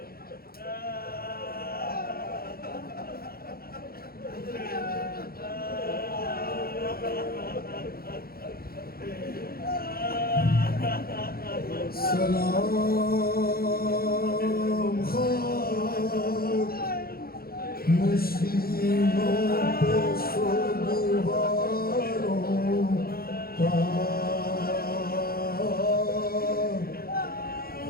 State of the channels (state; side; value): late; right; 0.44 ms